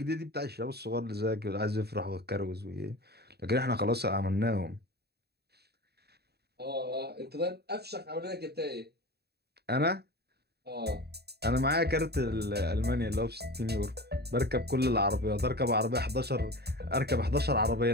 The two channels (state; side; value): late; left; 0.47 ms